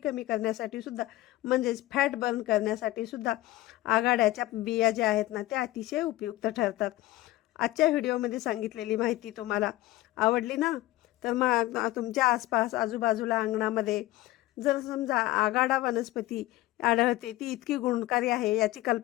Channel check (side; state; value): right; quieter; 17.0 dB